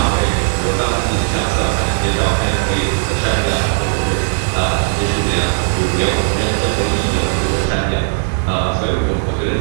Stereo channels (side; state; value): left; silent; digital silence